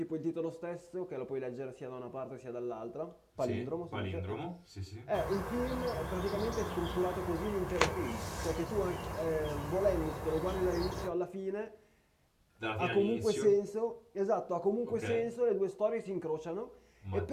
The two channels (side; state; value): both; identical; correlation 1.00